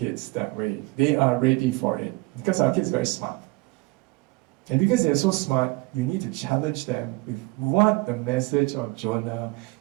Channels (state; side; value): quieter; left; 23.8 dB